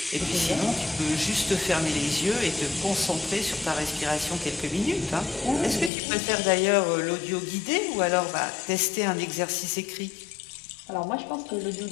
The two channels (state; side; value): drops out; right; at 5.9 s